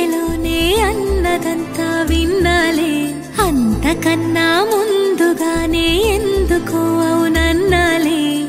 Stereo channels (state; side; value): identical; both; correlation 1.00